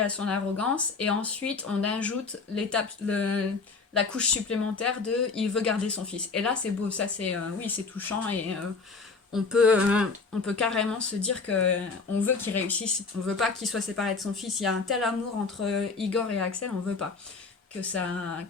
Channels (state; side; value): quieter; right; 4.5 dB